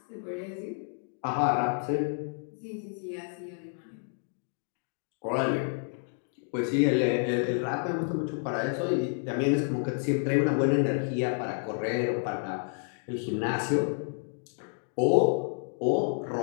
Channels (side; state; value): right; silent; 58 dB below the other